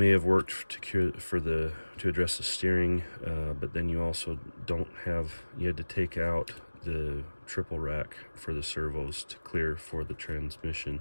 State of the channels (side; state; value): both; inverted; correlation -1.00